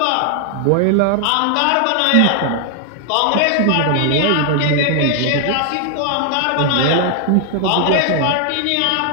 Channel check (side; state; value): both; different; correlation 0.00